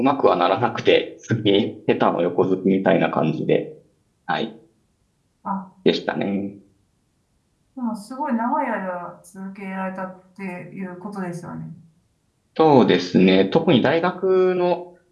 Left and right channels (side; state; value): both; identical; correlation 1.00